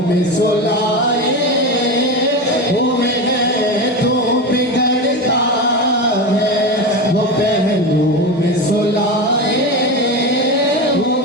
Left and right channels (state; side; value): normal; both; correlation 0.21